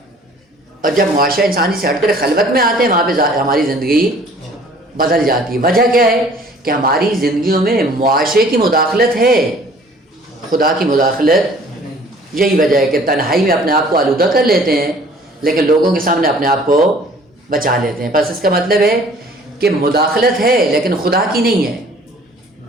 اور جب معاشرہ انسانی سے ہٹ کر خلوت میں آتے ہیں وہاں پہ ہماری زندگی بدل جاتی ہے. وجہ کیا ہے کہ ہماری زندگیوں میں معاشرے کی مداخلت ہے، خدا کی مداخلت. یہی وجہ ہے کہ تنہائی میں اپنے آپ کو آلودہ کر لیتے ہیں لیکن لوگوں کے سامنے اپنے آپ کو بچا لیتے ہیں. بس اس کا مطلب ہے کہ مداخلت ہے لیکن خدا کی نہیں ہے،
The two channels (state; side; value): normal; both; correlation 0.53